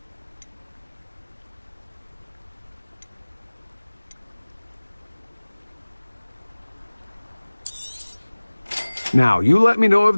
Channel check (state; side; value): inverted; both; correlation -1.00